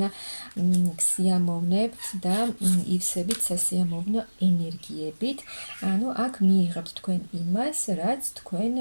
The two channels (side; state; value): both; inverted; correlation -1.00